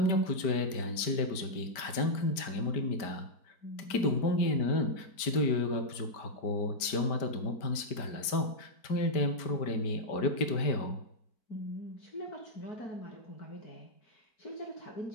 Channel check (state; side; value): late; right; 5.0 ms